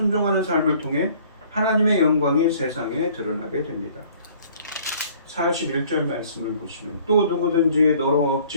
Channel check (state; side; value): inverted; both; correlation -0.55